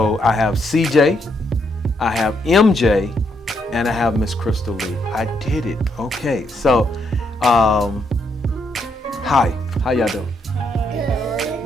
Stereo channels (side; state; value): both; normal; correlation 0.76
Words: I have CJ, I have MJ, and I have Miss Crystal Lee. I did it. Okay, so hi, how y'all doing?